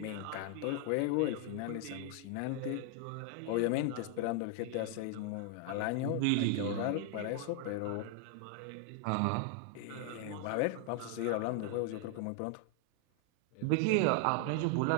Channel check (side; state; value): both; different; correlation 0.00